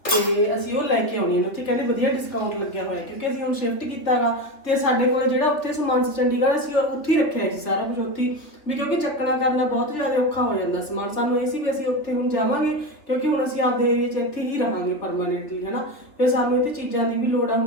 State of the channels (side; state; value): right; late; 3.1 ms